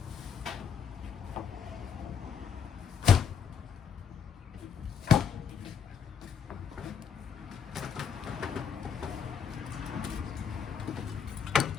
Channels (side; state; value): right; quieter; 7.2 dB